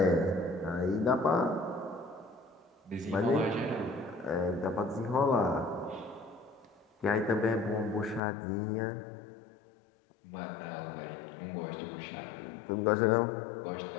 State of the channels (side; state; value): right; drops out; at 8.2 s